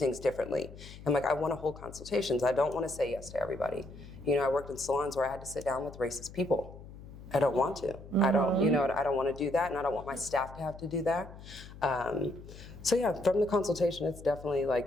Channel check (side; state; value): left; noise; hum, 16 dB below the sound